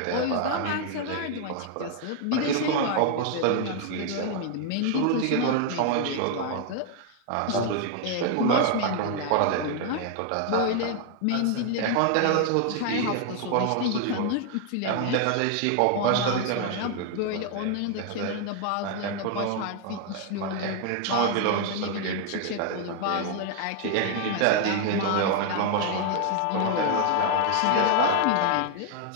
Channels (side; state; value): both; different; correlation 0.00